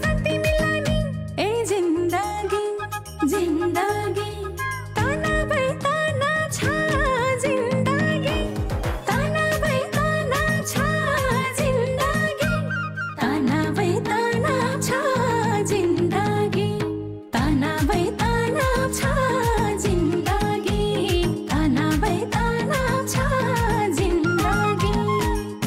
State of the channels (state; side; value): identical; both; correlation 1.00